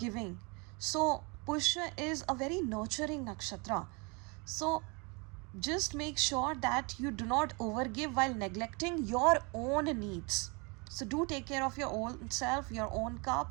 So Pushya is a very nurturing nakshatra. So just make sure that you do not overgive while neglecting your own needs. So do take care of your own self, your own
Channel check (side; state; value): left; quieter; 30.5 dB